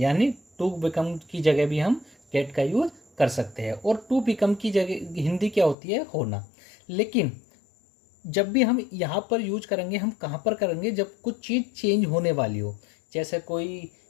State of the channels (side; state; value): right; drops out; at 5.8 s